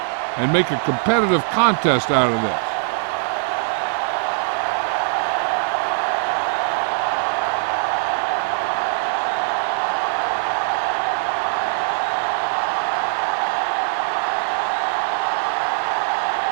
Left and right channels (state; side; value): silent; left; digital silence